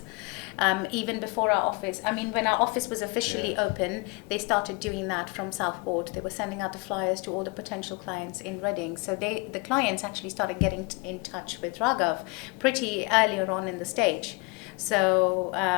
Even before our office. I mean, when our office was officially open, they started doing that from Southport. They were sending out the flyers to all the potential clients in Reading. So the clients actually started getting in touch with Raghav pretty earlier on in the stage. So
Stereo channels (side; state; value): right; quieter; 28.2 dB